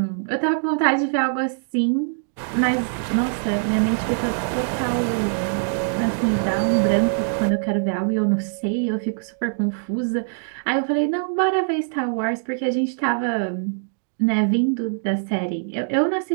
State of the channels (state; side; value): silent; left; digital silence